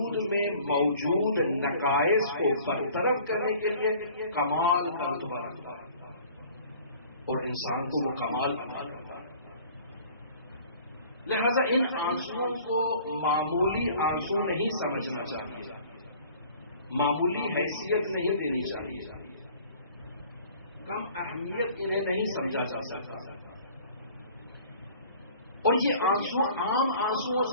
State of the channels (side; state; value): both; inverted; correlation -0.50